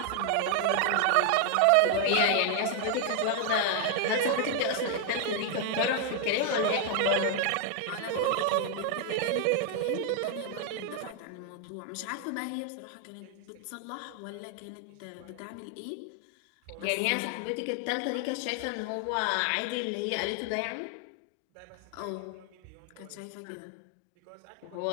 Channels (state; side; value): different; both; correlation 0.00